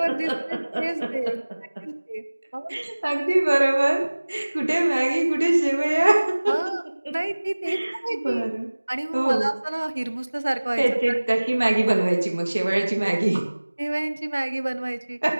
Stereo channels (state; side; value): inverted; both; correlation -1.00